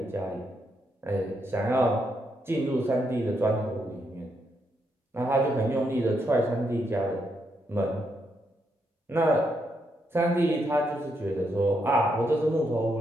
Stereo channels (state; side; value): normal; both; correlation 0.79